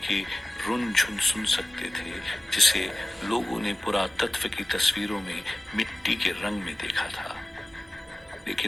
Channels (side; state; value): both; normal; correlation 0.96